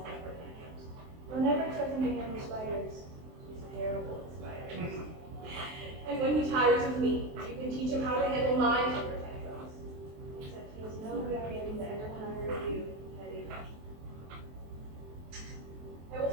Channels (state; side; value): late; left; 23 ms